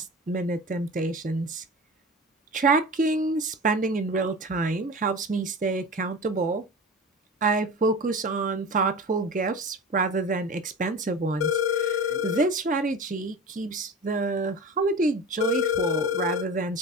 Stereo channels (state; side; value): normal; both; correlation 0.32